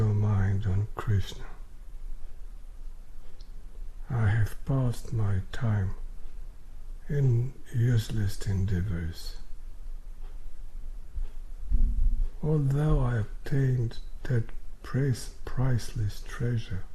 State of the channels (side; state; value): both; identical; correlation 1.00